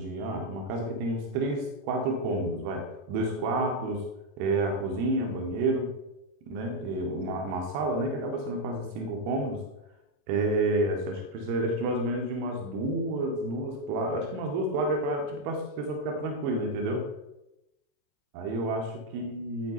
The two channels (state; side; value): late; left; 21 ms